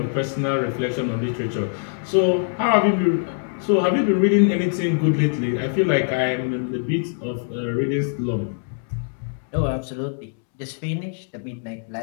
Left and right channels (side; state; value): right; silent; digital silence